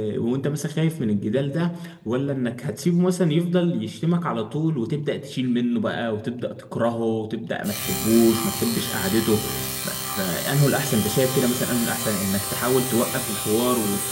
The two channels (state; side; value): identical; both; correlation 1.00